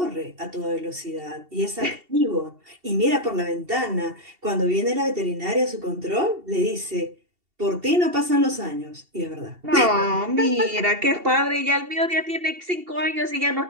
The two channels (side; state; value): left; late; 2.7 ms